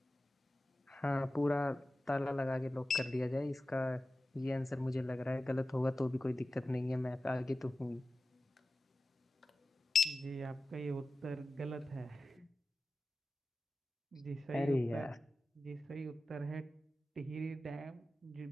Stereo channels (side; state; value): both; normal; correlation 0.93